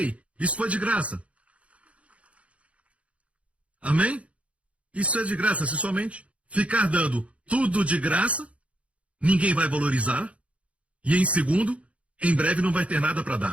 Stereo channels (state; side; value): late; left; 0.064 ms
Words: isso foi de graça. Amém? Isso é de graça, se somente ficar dando tudo de graça, ninguém vai valorizar. E em segundo, em breve não vai ter nada para